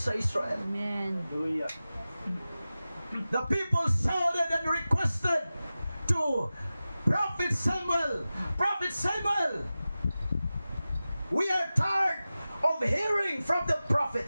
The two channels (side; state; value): both; inverted; correlation -0.95